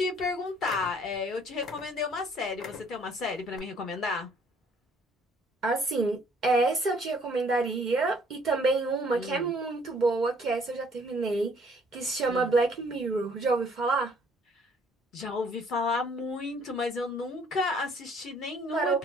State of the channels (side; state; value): both; normal; correlation 0.61